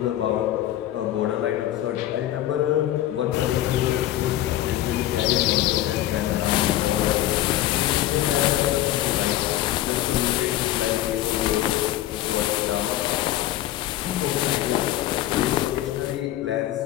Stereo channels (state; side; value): quieter; right; 13.8 dB